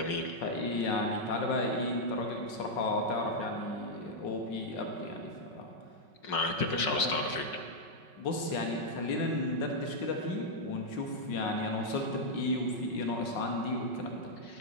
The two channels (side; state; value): right; late; 5.5 ms